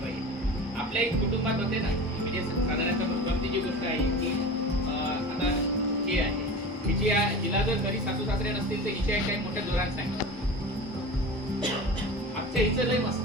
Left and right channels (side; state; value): both; normal; correlation 0.33